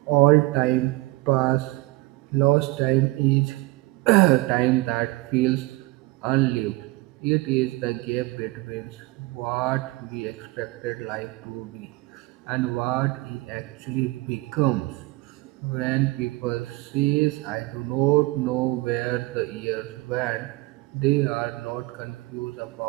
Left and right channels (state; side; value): quieter; left; 21.5 dB